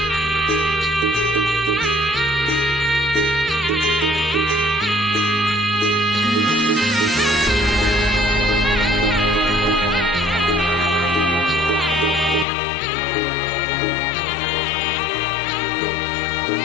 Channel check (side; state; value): right; drops out; at 12.5 s